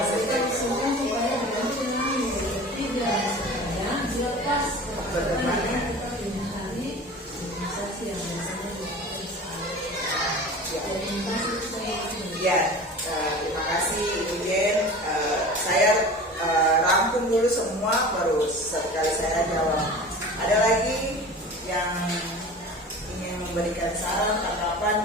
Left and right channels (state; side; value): normal; both; correlation 0.37